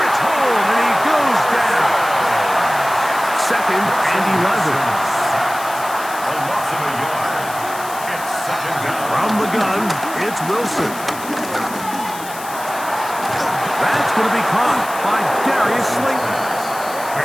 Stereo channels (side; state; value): left; noise; hiss, 13 dB below the sound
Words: home, and he goes down. 2nd and 11. From the gun, it's Wilson. That's going to be caught by Darius Slayton.